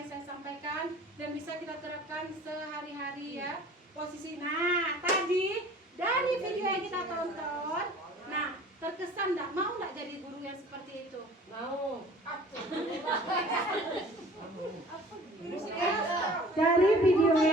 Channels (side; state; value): both; normal; correlation 0.48